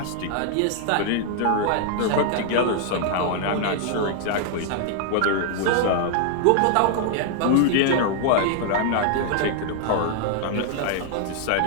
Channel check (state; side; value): different; both; correlation 0.00